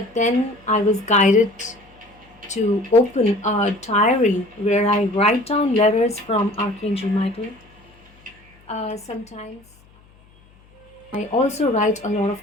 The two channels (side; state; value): left; noise; hum, 29 dB below the sound